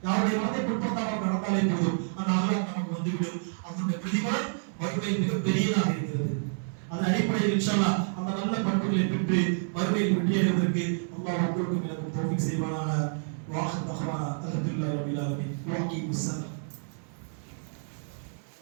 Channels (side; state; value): left; silent; 59 dB below the other